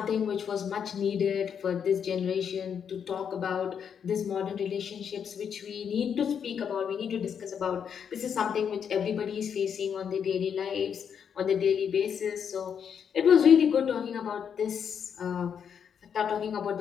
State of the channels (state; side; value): quieter; right; 7.6 dB